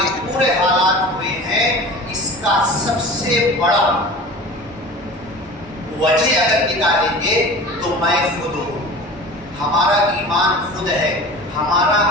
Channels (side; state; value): both; normal; correlation 0.38